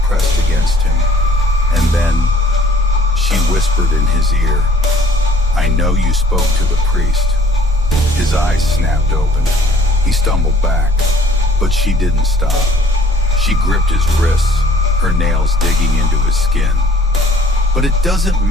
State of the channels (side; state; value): both; normal; correlation 0.56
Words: pressed against him, and then she whispered in his ear, "I know you spoke to the priest." His eyes snapped open. He stumbled back, but she didn't stop. She gripped his wrists, her nails digging into his skin. "But it doesn't